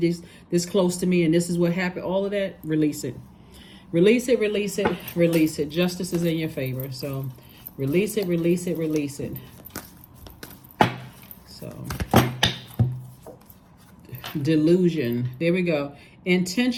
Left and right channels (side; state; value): both; identical; correlation 1.00